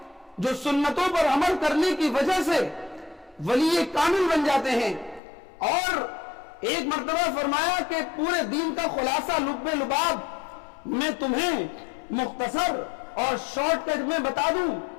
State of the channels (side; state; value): right; drops out; at 5.2 s